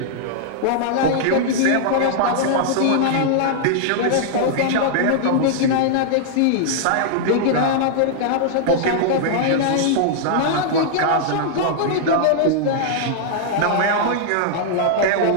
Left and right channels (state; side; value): different; both; correlation -0.01